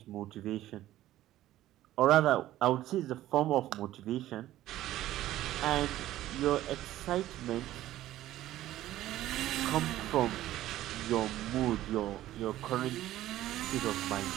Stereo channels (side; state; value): left; quieter; 14.3 dB